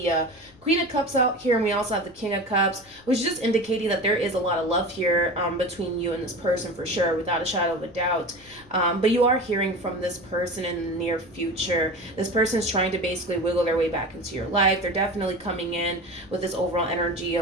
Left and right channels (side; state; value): left; noise; rumble, 27 dB below the sound